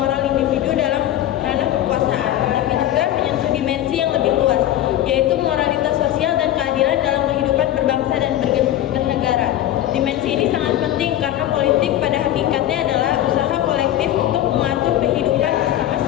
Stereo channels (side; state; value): right; quieter; 12.8 dB